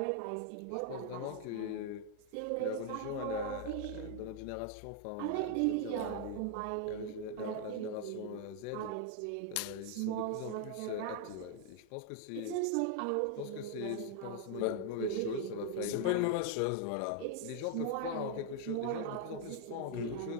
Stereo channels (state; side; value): different; both; correlation 0.00